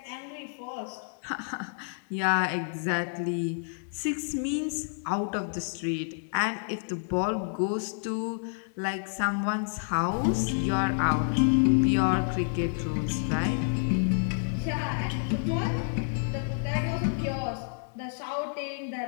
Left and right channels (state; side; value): silent; right; 58 dB below the other